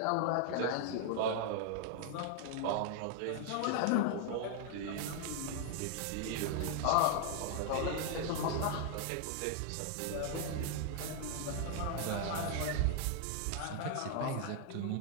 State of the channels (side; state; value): both; different; correlation 0.00